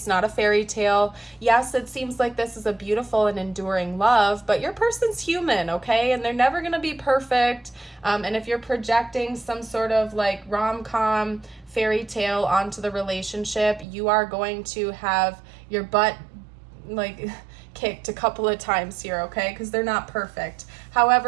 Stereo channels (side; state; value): left; drops out; at 13.9 s